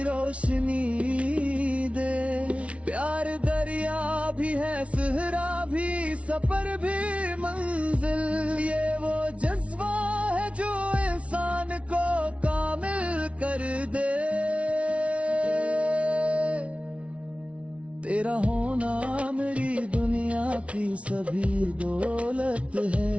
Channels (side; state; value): left; late; 0.062 ms